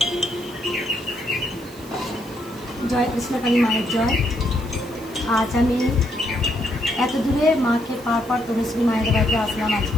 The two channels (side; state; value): right; noise; hiss, 22 dB below the sound